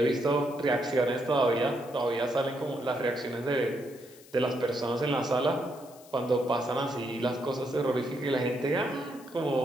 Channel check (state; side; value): noise; left; hiss, 23 dB below the sound